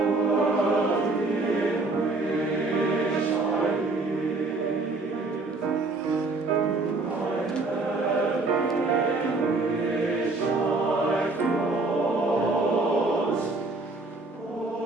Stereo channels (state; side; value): quieter; left; 3.3 dB